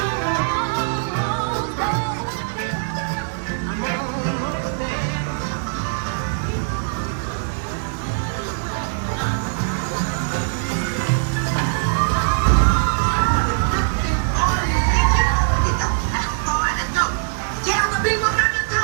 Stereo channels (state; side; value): silent; left; digital silence